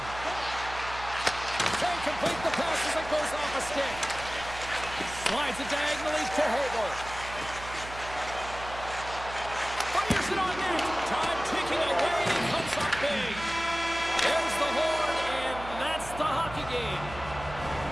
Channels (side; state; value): right; noise; hum, 13 dB below the sound